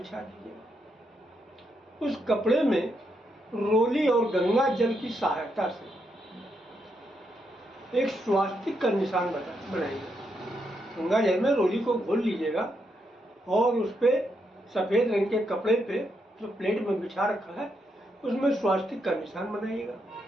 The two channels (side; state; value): both; normal; correlation 0.80